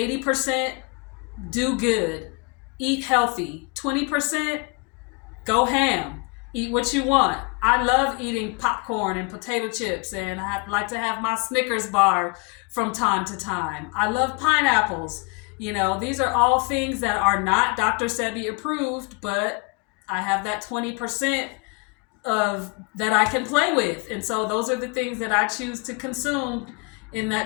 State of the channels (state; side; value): quieter; right; 31.3 dB